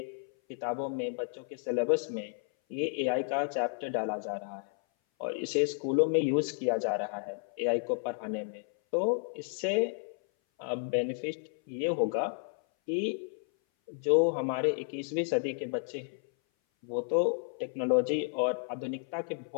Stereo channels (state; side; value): silent; right; 56 dB below the other